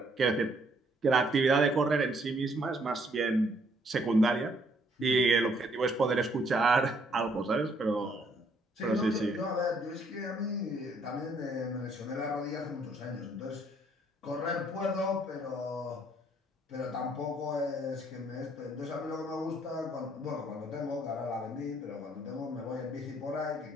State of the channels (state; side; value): normal; both; correlation 0.66